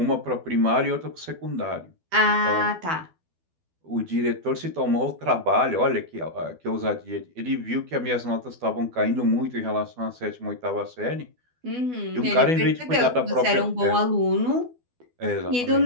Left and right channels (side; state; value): left; late; 12 ms